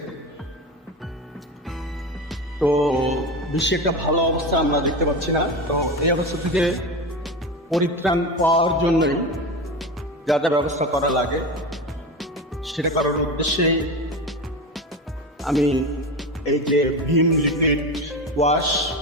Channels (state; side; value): normal; both; correlation 0.24